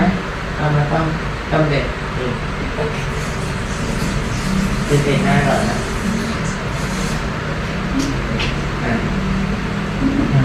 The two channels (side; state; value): both; identical; correlation 1.00